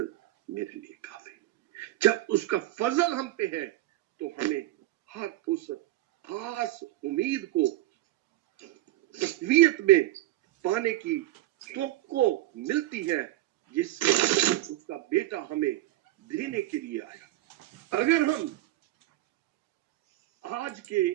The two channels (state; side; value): quieter; left; 16.0 dB